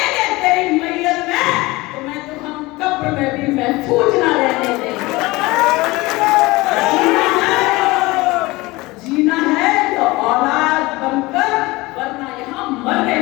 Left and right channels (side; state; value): right; quieter; 21.5 dB